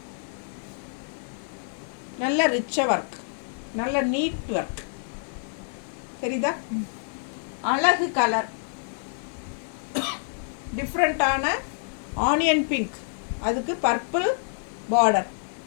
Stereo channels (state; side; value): silent; right; digital silence